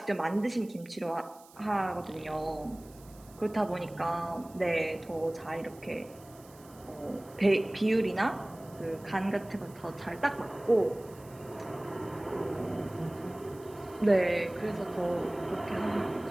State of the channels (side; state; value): right; noise; hiss, 24 dB below the sound